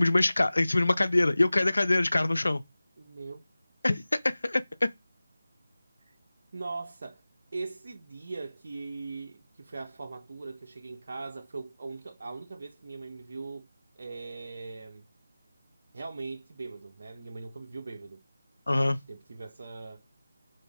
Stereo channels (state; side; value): inverted; both; correlation -0.98